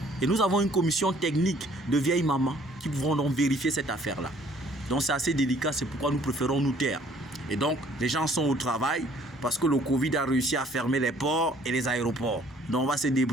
Et nous avons une commission technique de vieilles mamans qui pourront donc vérifier cette affaire-là. Donc c'est assez délicat, c'est pourquoi nous préférons nous taire. Et donc les gens sont au travail parce que le Covid a réussi à fermer les ports et les aéroports. Donc on va se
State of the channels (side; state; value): both; normal; correlation 0.59